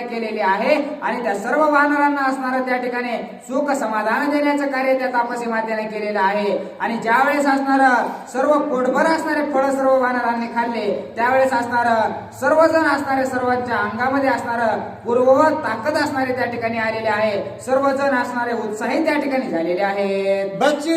केलेली आहे. आणि त्या सर्व वानरांना असणारं त्या ठिकाणी सुख समाधान देण्याचं कार्य त्या तापसी मातेने केलेलं आहे. आणि ज्या वेळेस असणार सर्व पोटभर असणारे फळ सर्व वानरांनी खाल्ले त्यावेळेस असणार सर्वजण असणारे सर्वांच्या अंगामध्ये असणार पूर्ववत ताकद असणारे त्या ठिकाणी आलेले आहे. सर्वजण असणारे उत्साही त्या ठिकाणी झालेले आहेत.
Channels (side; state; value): both; identical; correlation 1.00